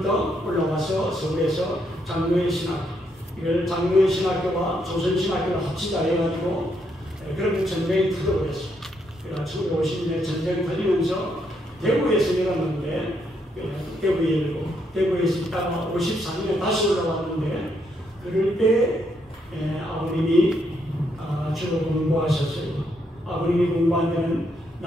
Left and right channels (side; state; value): both; normal; correlation 0.76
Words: 올라와서 서울에서 장로의 신학교 이걸 장로의 신학교와 조선신학교를 합치자 해가지고 그런 전쟁이 터져버렸어요. 그래서 1950년에 전쟁이 터지면서 대구에서 열었는데 대구에 열고 대구에서 있다가 54년에 다시 올라왔는데 그럴 때 아버님이 주로 공부하셨어요. 아버님이 공부한 데는